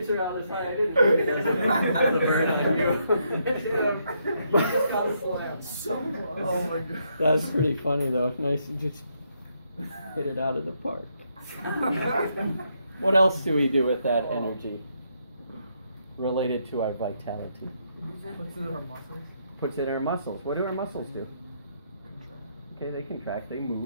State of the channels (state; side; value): inverted; both; correlation -0.76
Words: out this high. I didn't think it as a burn on you. Oh my god. That's pretty funny though. Nice to just hit it out of the park. What else do we do with that energy related to our vitality? What's in our muscles? Puts in our muscles. What do our muscles do? Okay, they contract, they